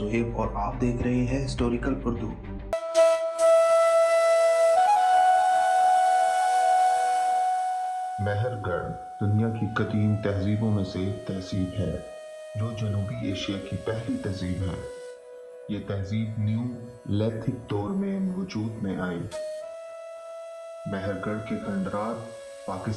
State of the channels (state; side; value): identical; both; correlation 1.00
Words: और आप देख रहे हैं हिस्टोरिकल उर्दू। मेहरगढ़ दुनिया की कदीम तहजीबों में से एक तहजीब है जो जनूबी एशिया की पहली तहजीब है। ये तहजीब न्यू लिथिक दौर में वजूद में आई। मेहरगढ़ के खंडरात